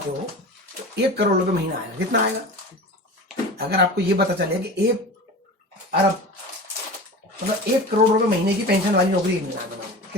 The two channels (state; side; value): normal; both; correlation 0.33